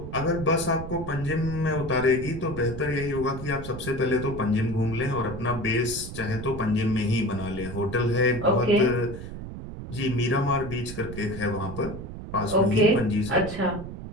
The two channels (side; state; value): right; noise; rumble, 9 dB below the sound